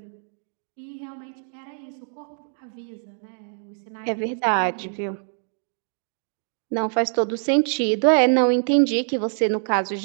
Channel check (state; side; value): silent; left; digital silence